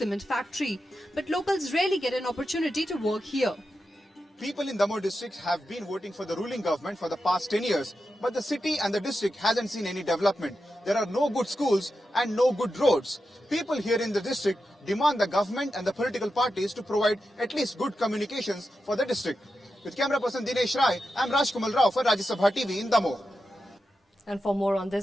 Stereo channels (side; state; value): both; normal; correlation 0.89